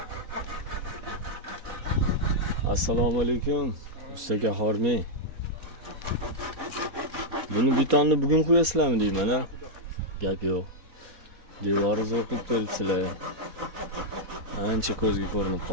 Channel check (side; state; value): left; late; 3.9 ms